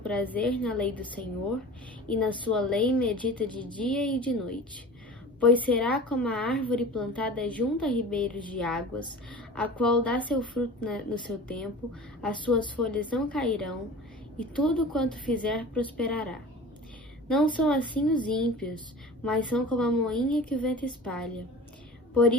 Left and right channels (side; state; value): both; normal; correlation 0.38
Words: na lei do Senhor, e na sua lei medita de dia e de noite. Pois será como a árvore plantada junto a ribeiros de águas, a qual dá seu fruto no seu tempo, as suas folhas não cairão, e tudo quanto fizer prosperará. Não são assim os ímpios, mas são como a moinha que o vento espalha. Por